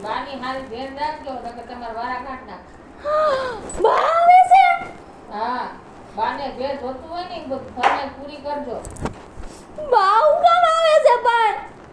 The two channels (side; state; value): both; identical; correlation 1.00